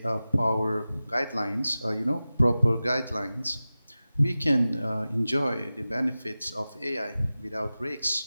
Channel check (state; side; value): inverted; both; correlation -0.96